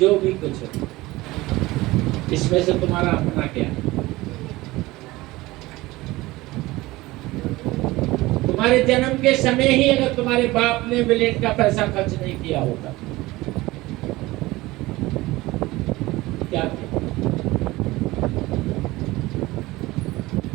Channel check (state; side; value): quieter; left; 19.6 dB